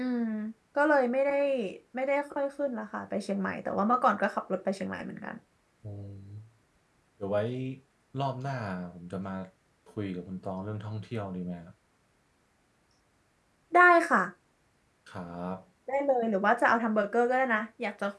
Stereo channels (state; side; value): identical; both; correlation 1.00